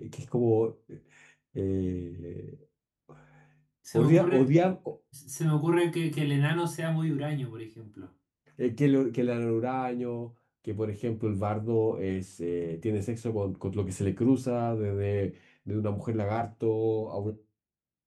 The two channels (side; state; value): both; identical; correlation 1.00